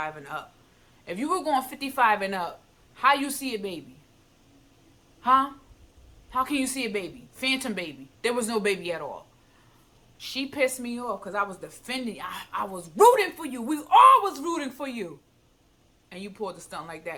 and up. If you were going 55 and up, how you see a baby? Huh? How can you see a baby? Phantom baby. There was no baby at all. She pissed me off because I was defending. I was rooting for you. We all was rooting for you. And you pulled a stunt like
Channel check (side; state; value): both; identical; correlation 1.00